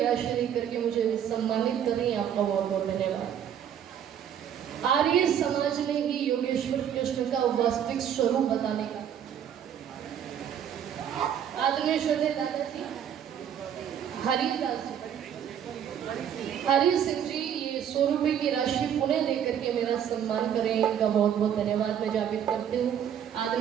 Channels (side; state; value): left; quieter; 9.1 dB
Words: देकर के मुझे सम्मानित कर रही है, आपका बहुत बहुत धन्यवाद। आर्य समाज ने ही योगेश्वर कृष्ण का वास्तविक स्वरूप बताने का आदरणीय श्रद्धेय दादाजी हरिदास हरि सिंह जी, ये 100 रुपए की राशि पुनः देकर के मेरा सम्मान करें, इनका बहुत बहुत धन्यवाद मैं ज्ञापित करती हूँ।